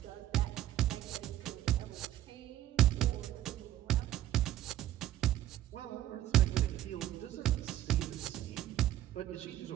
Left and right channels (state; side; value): quieter; left; 13.0 dB